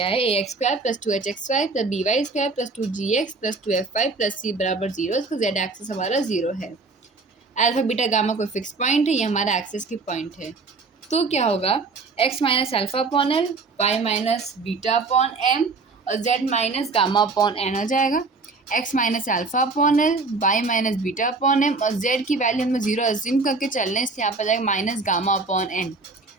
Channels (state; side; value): quieter; left; 3.9 dB